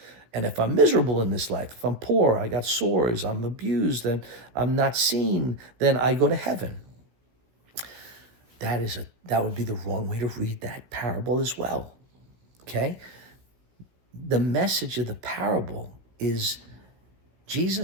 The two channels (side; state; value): left; late; 16 ms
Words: And if I'm miserable in this life, if I'm poor, I got sores, I'm abused, and I'm not seen, then I go to heaven. That would be the wrong way to read that parable as well. Okay? The message of the parable is